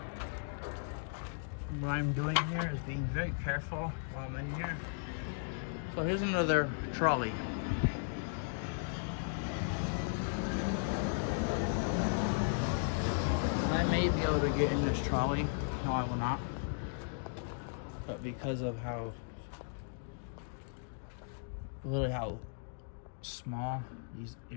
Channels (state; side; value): silent; right; digital silence